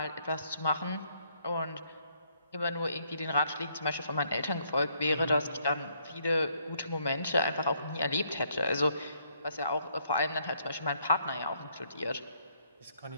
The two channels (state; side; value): inverted; both; correlation -0.70